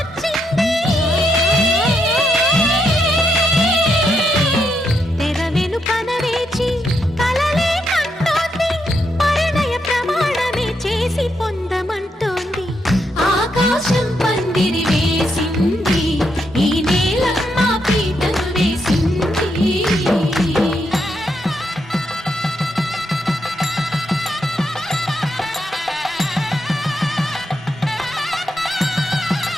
తెర వెనుకన వేచి కలలే కంటోంది, పరిణయ ప్రమాణమే చేసి పొందమంటోంది. ఆకాశం పందిరి వేసింది, ఈ నేలమ్మ పీటను వేసింది.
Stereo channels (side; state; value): both; normal; correlation 0.80